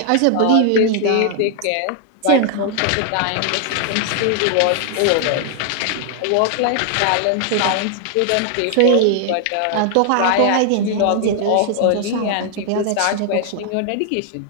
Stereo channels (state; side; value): different; both; correlation 0.00